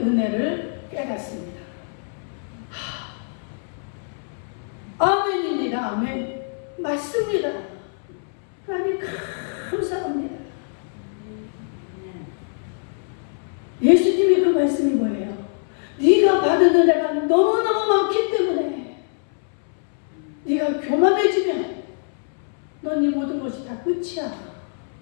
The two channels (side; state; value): right; silent; 63 dB below the other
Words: 깨닫습니다. 아멘입니다. 아멘. 맞습니다. 하나님 감사합니다. 예수님이 그 말씀이 뭐예요? 네가 받은 은혜가 너무너무 많기 때문에 네가 교만해지면 넌 이 모든 것이 다 끝이야.